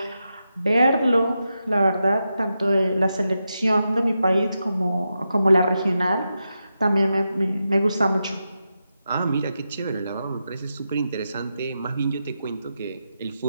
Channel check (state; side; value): inverted; both; correlation -0.88